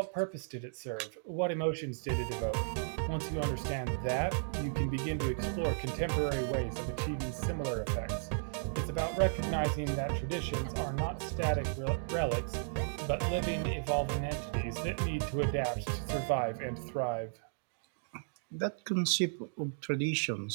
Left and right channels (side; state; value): left; silent; digital silence